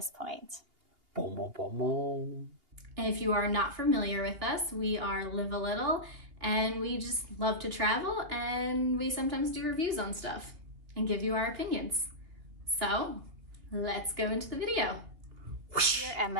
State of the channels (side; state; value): left; late; 2.6 ms